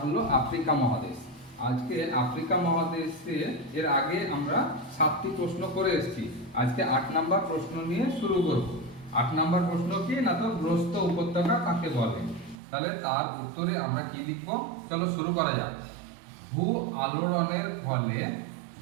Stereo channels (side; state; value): left; drops out; at 12.6 s